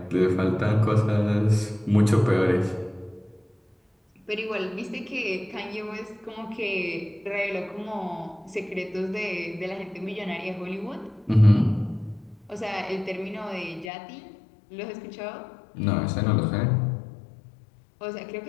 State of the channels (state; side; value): drops out; right; at 13.9 s